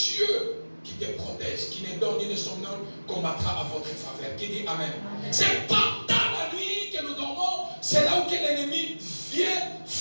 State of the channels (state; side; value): inverted; both; correlation -1.00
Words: qui te protège, qui ne dort ni ne somnole, combattra à votre faveur. Qui dit Amen? Amen. C'est pendant la nuit que nous dormons, c'est là où l'ennemi vient